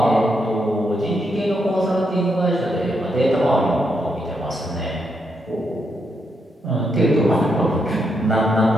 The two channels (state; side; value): normal; both; correlation 0.80